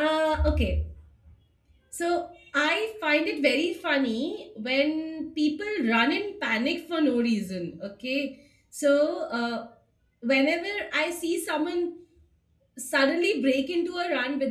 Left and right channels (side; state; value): both; identical; correlation 1.00